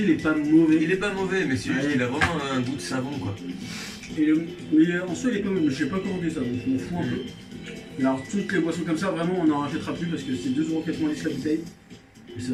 il est pas mauvais. Il est pas mauvais, mais c'est juste Ouais. qu'il a vraiment un goût de savon, quoi. Mais en soi, il est pas mauvais. Je sais pas commandé ça, donc je m'en fous un peu. Et alors, toutes les boissons comme ça, vraiment, on n'en rachètera plus parce que c'est 2,90€ la bouteille. Et c'est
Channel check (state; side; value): identical; both; correlation 1.00